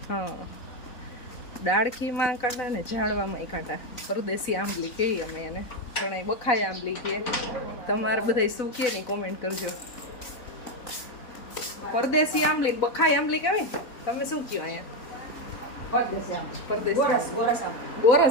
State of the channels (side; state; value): right; late; 3.9 ms